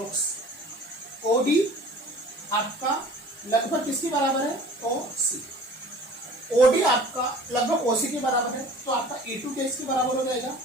OD आपका लगभग किसके बराबर है OC, OD आपका लगभग OC के बराबर है, तो आपका E2 किसके बराबर हो जाएगा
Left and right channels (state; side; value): normal; both; correlation 0.45